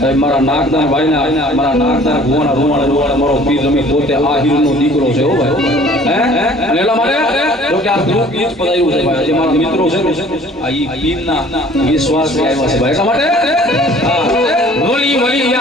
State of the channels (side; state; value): both; normal; correlation 0.52